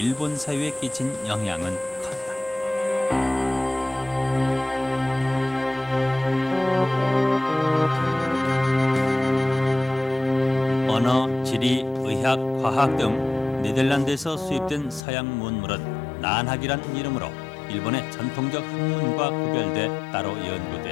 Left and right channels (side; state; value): right; drops out; at 15.0 s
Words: 사회에 끼친 영향은 컸다. 언어, 지리, 의학, 과학 등 네덜란드에서 수입된 서양 문물은 난학이란 이름으로 일본의 전통적 학문과 구별돼 따로